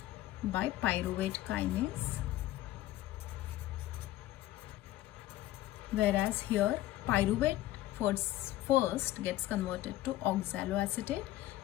by pyruvate kinase, whereas here pyruvate first gets converted to oxaloacetate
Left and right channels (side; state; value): right; quieter; 15.3 dB